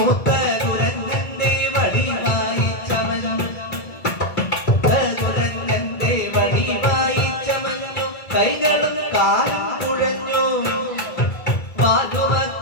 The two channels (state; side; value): late; right; 1.6 ms